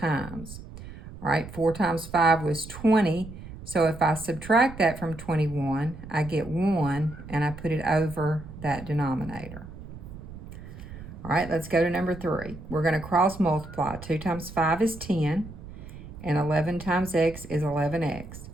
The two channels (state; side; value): noise; right; rumble, 14 dB below the sound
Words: All right, 4 times 5 was 20. So if I subtract that from 21, I get 1, and I put it over that denominator. All right, let's go to number 3. We're going to cross multiply. 2 times 5 is 10, and 11 times x is 11x.